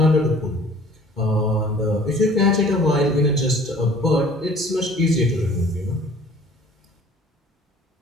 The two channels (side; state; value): both; normal; correlation 0.50